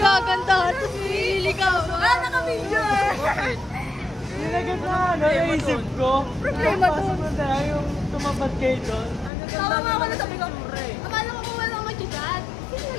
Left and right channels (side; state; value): right; drops out; at 9.3 s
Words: Tapos nililigaw. Naka-video eh. Nilagay na naisip ko. Problema to. Pasok na tayo yung tumapat kayo doon. Tawa nga ako na sabi ko. Akala ko kung walang mag-chat.